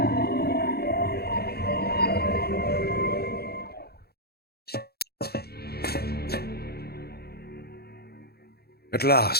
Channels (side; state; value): right; late; 0.46 ms